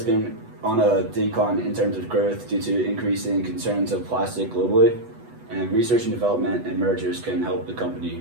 been on a decline in terms of growth due to increasing concerns of plastic globally, and research and development and mergers can help the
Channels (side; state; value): left; late; 8.1 ms